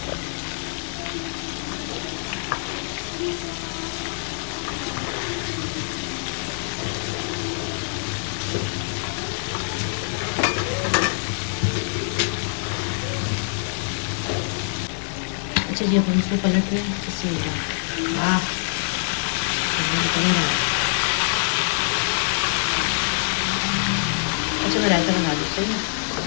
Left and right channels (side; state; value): right; silent; digital silence